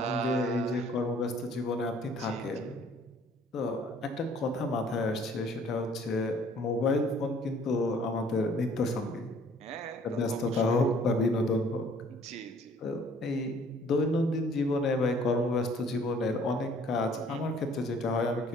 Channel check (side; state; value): both; normal; correlation 0.57